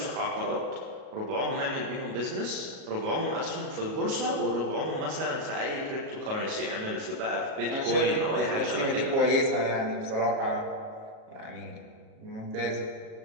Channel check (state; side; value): late; left; 37 ms